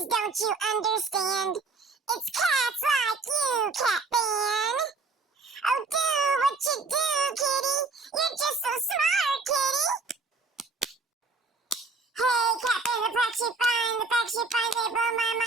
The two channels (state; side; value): quieter; left; 4.0 dB